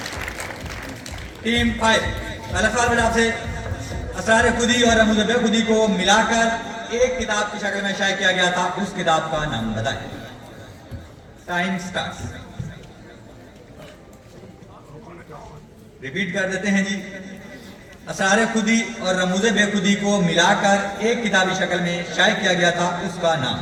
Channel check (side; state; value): both; identical; correlation 1.00